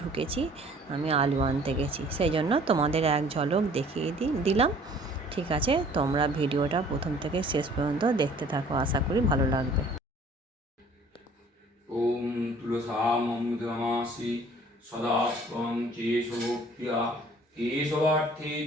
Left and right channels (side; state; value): both; normal; correlation 0.53